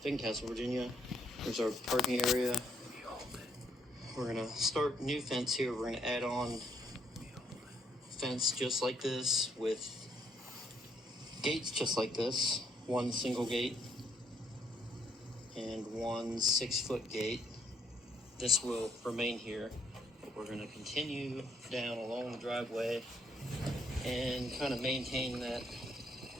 Virginia. There's our parking area. We're gonna start new fence here. We're gonna add on fence just like this with gates just like this. One single gate and one 6-foot gate. This will remain here, but we're gonna continue down along the driveway and kind of maintain that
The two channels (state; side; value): normal; both; correlation 0.70